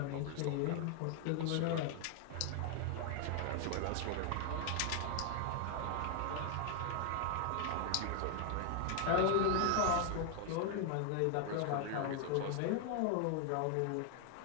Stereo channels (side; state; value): both; different; correlation 0.00